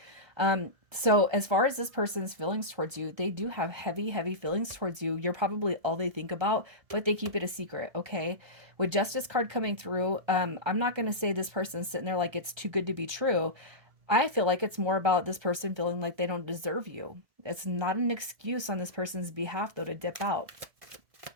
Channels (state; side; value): late; left; 1.3 ms